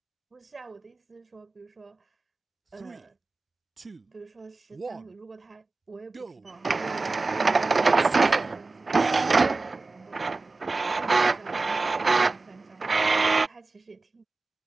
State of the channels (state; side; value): quieter; left; 3.6 dB